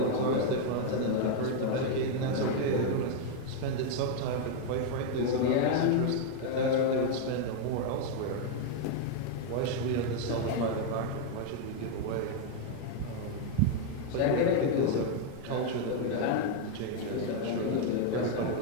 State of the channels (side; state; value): both; different; correlation 0.00